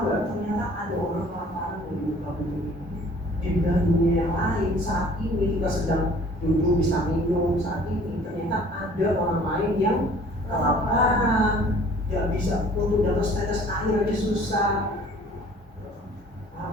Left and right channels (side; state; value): both; normal; correlation 0.52